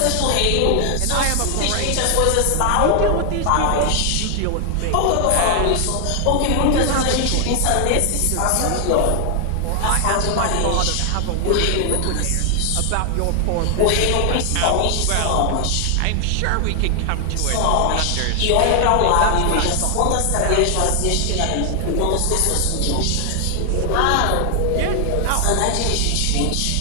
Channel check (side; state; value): both; different; correlation 0.00